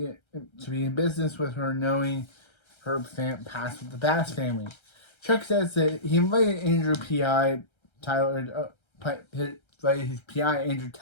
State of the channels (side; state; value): right; late; 1.3 ms